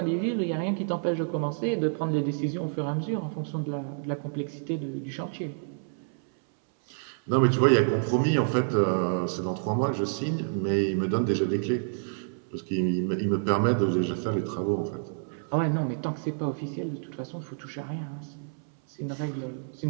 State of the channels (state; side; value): silent; left; 59 dB below the other